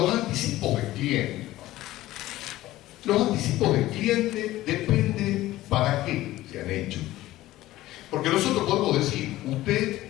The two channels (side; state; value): right; quieter; 16.0 dB